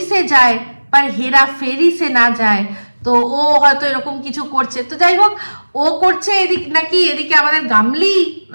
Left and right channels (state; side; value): inverted; both; correlation -1.00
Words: সে যায় पर हेरा फेरी से ना যায়। তো ও হয়তো এরকম কিছু করছে। তো যাই হোক, ও করছে এদিকে নাকি এদিকে আমাদের গামলি